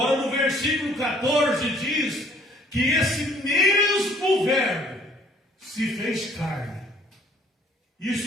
no versículo 14 diz que esse mesmo Verbo se fez carne.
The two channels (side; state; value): both; normal; correlation 0.59